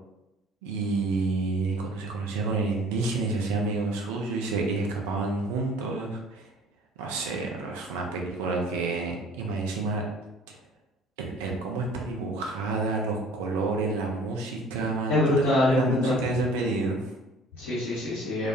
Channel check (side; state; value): both; normal; correlation 0.50